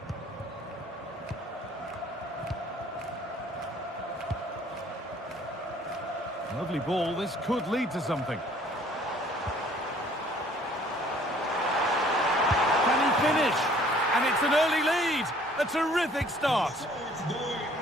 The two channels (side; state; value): both; normal; correlation 0.57